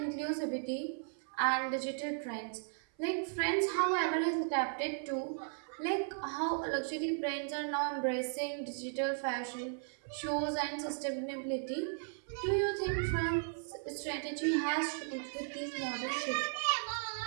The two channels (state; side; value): silent; left; 54 dB below the other